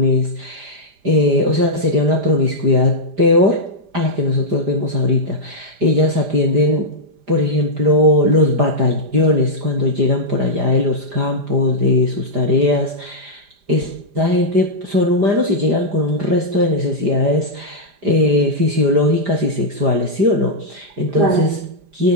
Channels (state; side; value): late; left; 5.0 ms